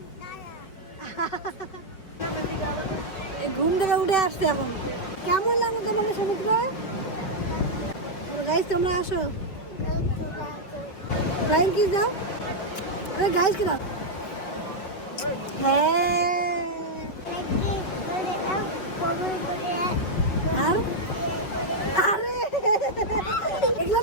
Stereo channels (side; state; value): right; late; 5.3 ms